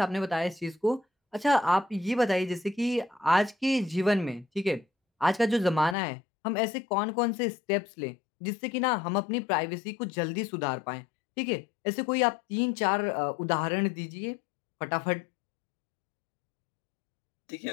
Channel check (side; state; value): right; drops out; at 6.0 s